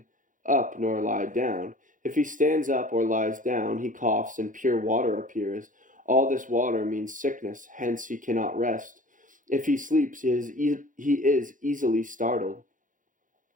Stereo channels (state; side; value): late; left; 0.38 ms